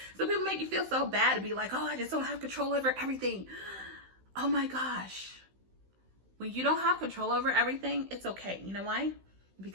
So people make you feel so bad to be like, oh, I just don't have control over everything. Oh my gosh. When you don't have control over everything, it's okay. You know why?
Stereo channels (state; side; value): late; left; 16 ms